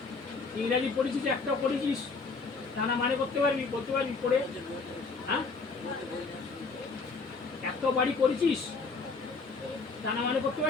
ইংরাজি পড়েছিস, একটাও পড়েছিস তা না মানে করতে পারবি, বলতে পারবি পড়ে? হ্যাঁ, একটাও বাড়ি করেছিস তা না মানে করতে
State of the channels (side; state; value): right; quieter; 4.2 dB